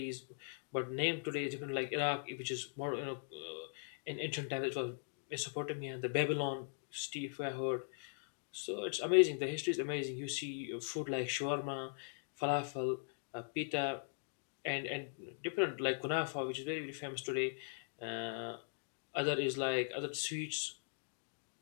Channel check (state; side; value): silent; right; digital silence